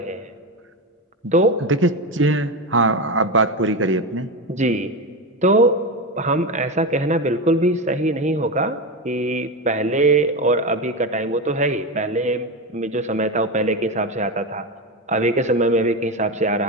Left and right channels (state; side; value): normal; both; correlation 0.17